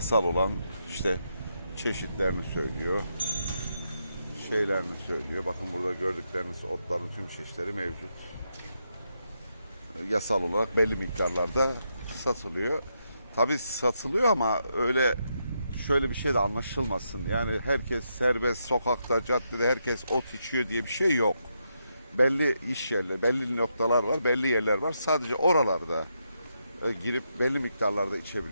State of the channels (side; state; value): both; inverted; correlation -0.82